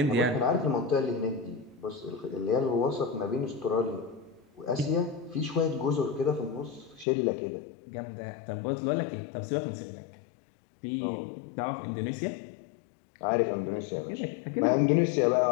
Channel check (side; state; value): right; drops out; at 7.1 s